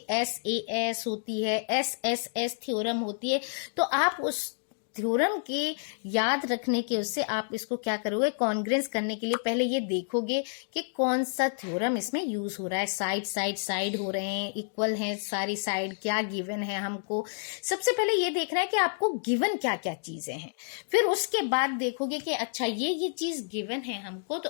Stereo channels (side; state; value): right; silent; digital silence